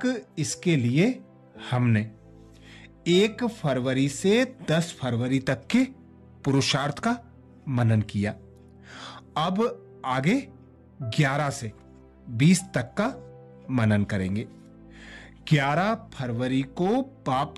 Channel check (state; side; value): identical; both; correlation 1.00